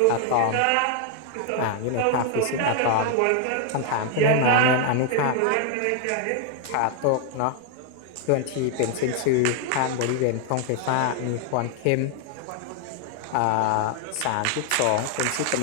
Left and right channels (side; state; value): both; different; correlation 0.00